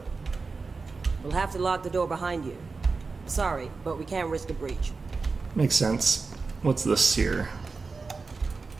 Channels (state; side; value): quieter; left; 4.3 dB